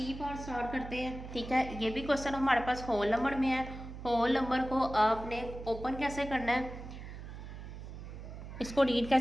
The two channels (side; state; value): right; noise; hum, 11 dB below the sound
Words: पार्ट स्टार्ट करते हैं। ठीक है, ये भी क्वेश्चन हमारे पास होल नंबर में है। होल नंबर को आपने ओपन कैसे करना है, इसको रीड